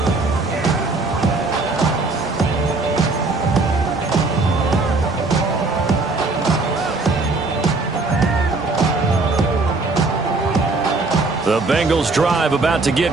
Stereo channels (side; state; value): left; quieter; 3.6 dB